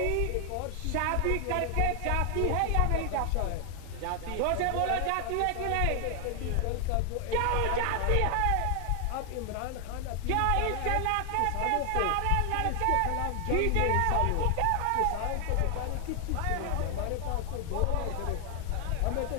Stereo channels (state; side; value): different; both; correlation 0.00